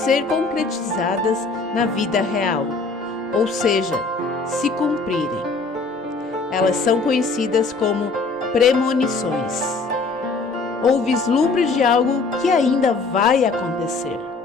concretizadas na vida real, ou seja, se cumprirem. Elas são conhecidas como premonições, ou vislumbres de algo que ainda vai acontecer.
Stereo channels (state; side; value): quieter; right; 4.0 dB